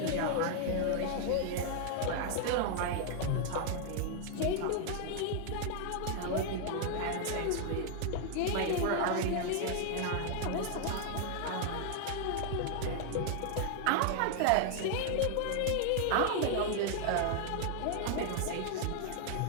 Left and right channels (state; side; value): different; both; correlation 0.00